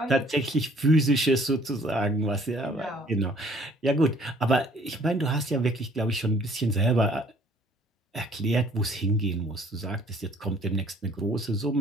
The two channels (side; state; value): both; normal; correlation 0.58